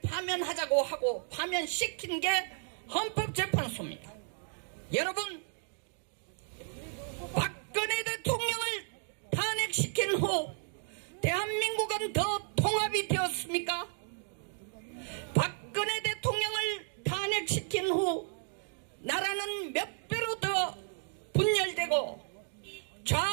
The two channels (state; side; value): silent; left; 56 dB below the other